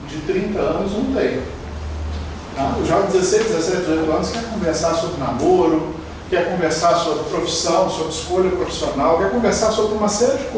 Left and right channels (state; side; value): identical; both; correlation 1.00